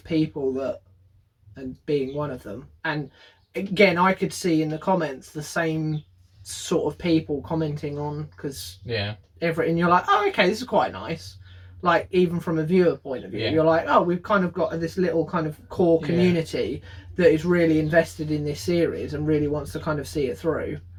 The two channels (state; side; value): identical; both; correlation 1.00